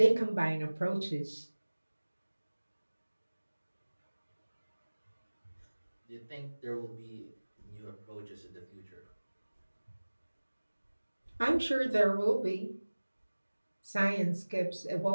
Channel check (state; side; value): inverted; both; correlation -1.00